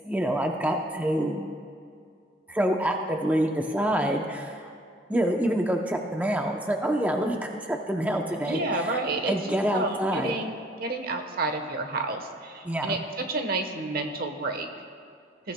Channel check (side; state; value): both; normal; correlation 0.59